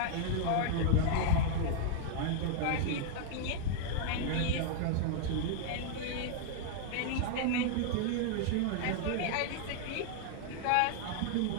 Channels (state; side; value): different; both; correlation 0.00